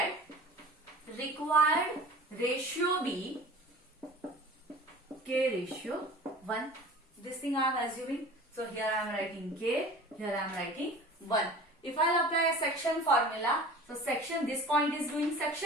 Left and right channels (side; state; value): both; normal; correlation 0.41